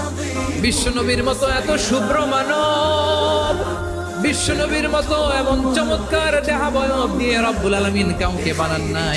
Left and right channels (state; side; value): identical; both; correlation 1.00